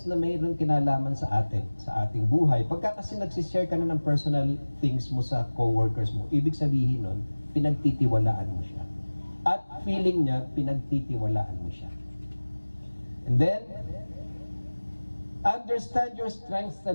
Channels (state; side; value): inverted; both; correlation -1.00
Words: na mayroon kinalaman sa ating buhay. Pagka kasi nagsishare ka na ng personal things mo sa co-workers mo, ibig sabihin nun, pinagtitiwalaan mo siya. At feeling niya, pinagtitiwalaan mo siya. And then, understand your strengths